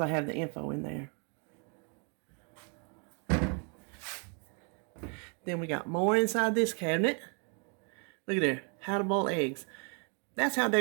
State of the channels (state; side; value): quieter; left; 37.9 dB